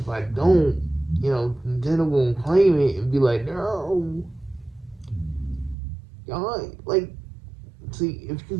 I don't, Nintendo won't claim it and be like, no, y'all like. See, if you're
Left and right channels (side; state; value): left; drops out; at 5.8 s